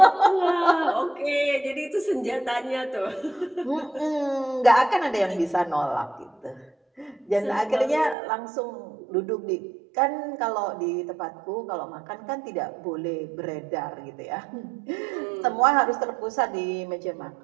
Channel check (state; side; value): drops out; left; at 8.2 s